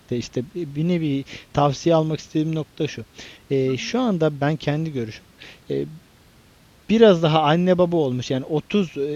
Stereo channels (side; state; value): both; identical; correlation 1.00